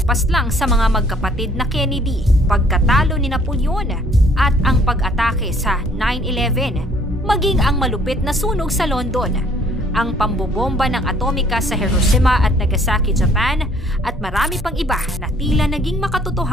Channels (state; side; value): normal; both; correlation 0.60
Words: sa mga magkapatid na Kennedy, pagkatalo ni Napoleon at ang pag-atake sa 9/11, maging ang malupit na sunog sa London, ang pambobomba ng atomika sa Hiroshima at Nagasaki, Japan, at marami pang iba na tila naging